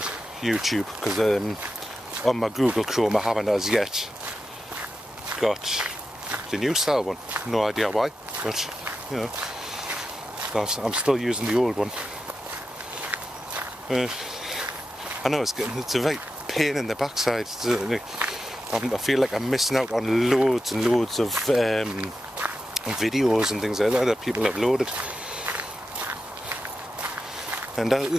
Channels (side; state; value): both; normal; correlation 0.89